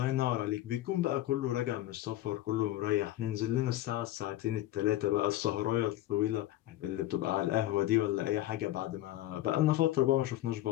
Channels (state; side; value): quieter; right; 14.7 dB